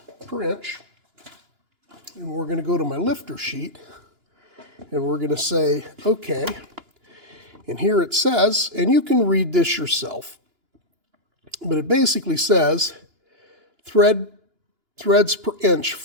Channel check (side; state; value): left; late; 2.9 ms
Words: per inch and we're going to go to my lifter sheet and we're going to say, okay, and here it says, and you can read this yourself, but it basically says threads per inch